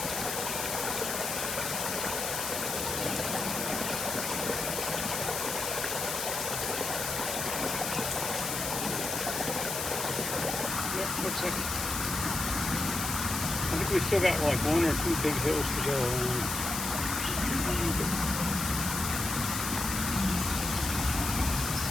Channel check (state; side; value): noise; left; hiss, 3 dB below the sound